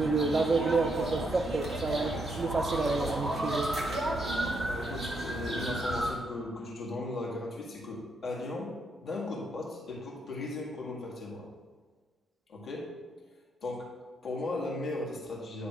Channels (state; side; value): normal; both; correlation 0.77